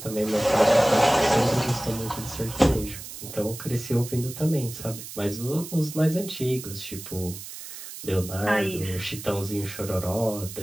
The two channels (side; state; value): right; noise; hiss, 12 dB below the sound